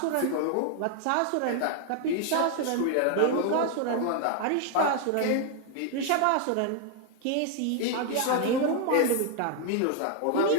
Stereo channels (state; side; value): different; both; correlation 0.00